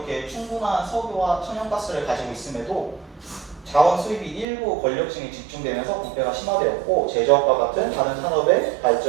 충분한 석유와 천연가스를 가지고 있음에도 자원 수입이 일부 권력층에 집중되면서 부패가 심화되었고, 제조업과 같은 다른 산업의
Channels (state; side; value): drops out; left; at 4.5 s